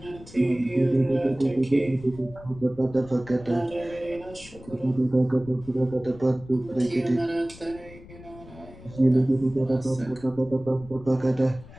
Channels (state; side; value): noise; left; rumble, 19 dB below the sound